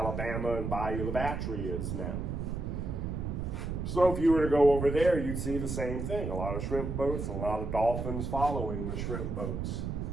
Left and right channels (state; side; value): noise; right; rumble, 3 dB below the sound